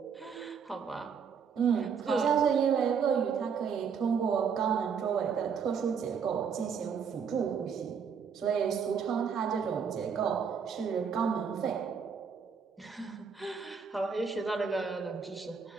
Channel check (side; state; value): left; quieter; 6.5 dB